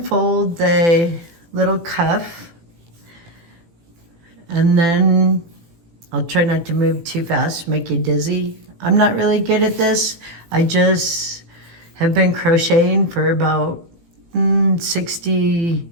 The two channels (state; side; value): late; left; 18 ms